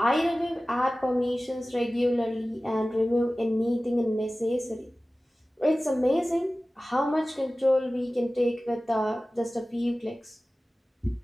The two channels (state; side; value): normal; both; correlation 0.97